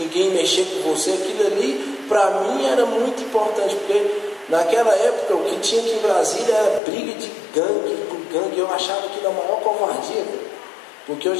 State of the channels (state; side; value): drops out; right; at 6.8 s